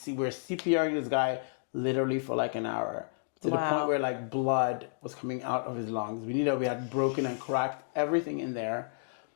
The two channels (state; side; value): silent; right; digital silence